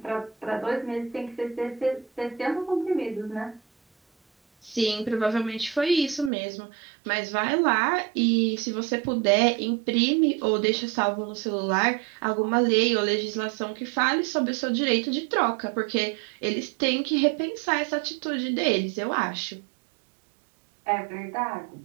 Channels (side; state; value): left; drops out; at 6.3 s